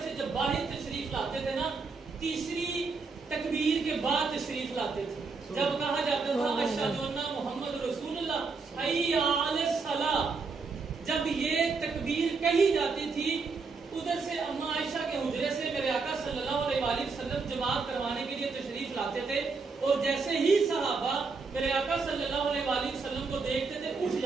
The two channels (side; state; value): left; quieter; 4.5 dB